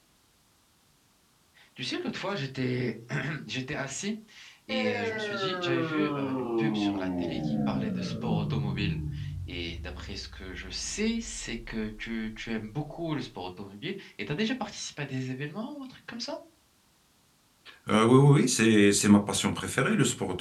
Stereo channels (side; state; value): both; identical; correlation 1.00